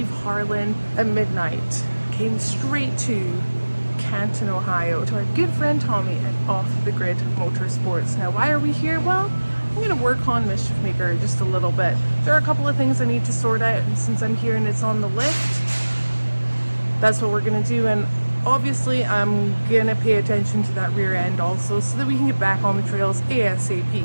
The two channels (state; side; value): inverted; both; correlation -1.00